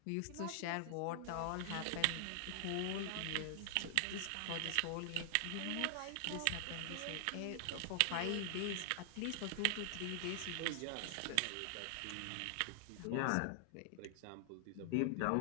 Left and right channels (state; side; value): different; both; correlation -0.01